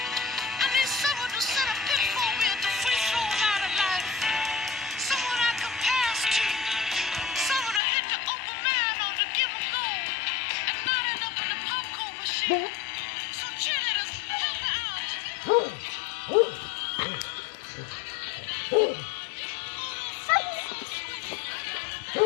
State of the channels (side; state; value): right; drops out; at 7.8 s